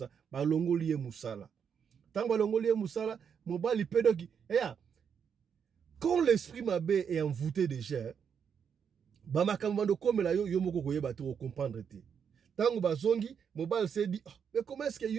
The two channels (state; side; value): quieter; left; 7.3 dB